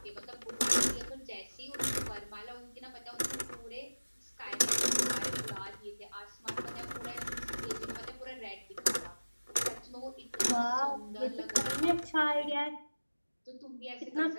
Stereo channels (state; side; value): inverted; both; correlation -1.00